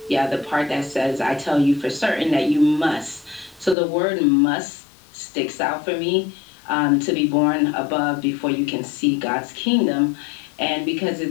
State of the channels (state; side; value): drops out; right; at 3.8 s